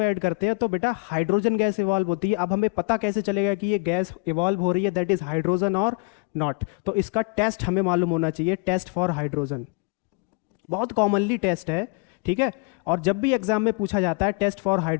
ऐड करते हैं तो बेटा हाइड्रोजन गैस इवॉल्व होती है। अब हमें पता कैसे चलेगा कि ये गैस इवॉल्व हो रही है, दैट इज हाइड्रोजन और नॉट, तो इसका टेस्ट हमें मालूम होना चाहिए, टेस्ट फॉर हाइड्रोजन, बहुत कॉमनली टेस्ट है, ठीक है। और जब भी एग्जाम में पूछा जाता है टेस्ट फॉर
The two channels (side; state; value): right; quieter; 31.8 dB